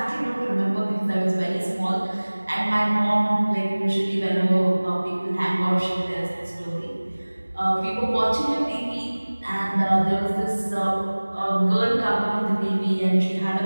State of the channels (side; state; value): both; inverted; correlation -1.00